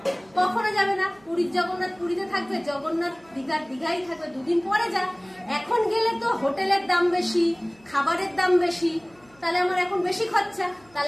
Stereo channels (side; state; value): right; noise; hum, 30 dB below the sound